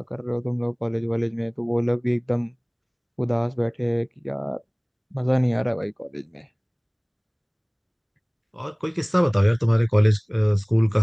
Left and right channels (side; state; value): both; identical; correlation 1.00